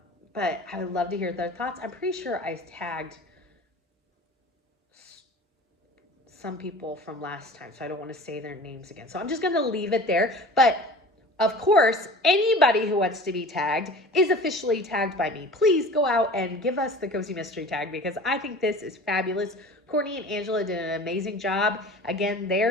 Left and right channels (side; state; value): both; normal; correlation 0.40